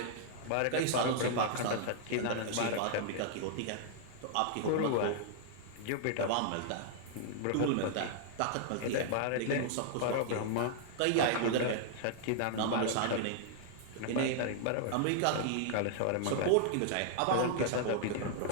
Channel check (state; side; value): different; both; correlation -0.01